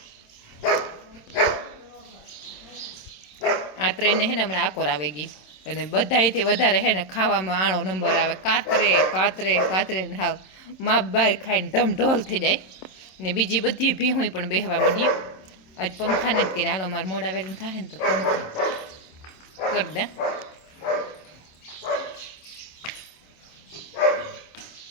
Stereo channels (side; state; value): right; late; 27 ms